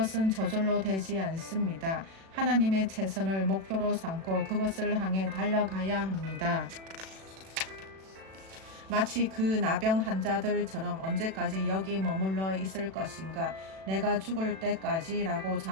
저절로 되지 않습니다. 하나님의 최선을 목표로 삼고 그것을 향해 달려가야 합니다. 마치 그 나병 환자들처럼 언제까지 여기 머물러 있을 것인가? 내가 죽을 때까지라고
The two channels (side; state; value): left; late; 36 ms